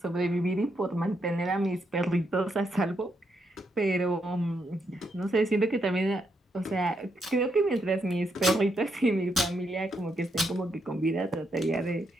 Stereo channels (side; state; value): both; normal; correlation 0.79